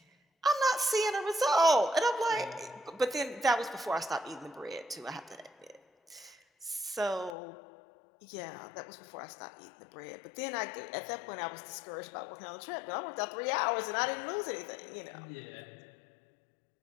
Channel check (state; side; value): drops out; right; at 7.4 s